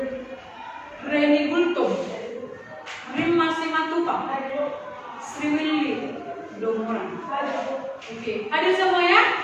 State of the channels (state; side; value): identical; both; correlation 1.00